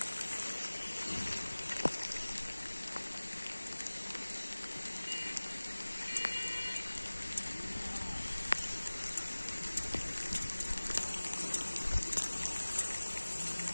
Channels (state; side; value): inverted; both; correlation -1.00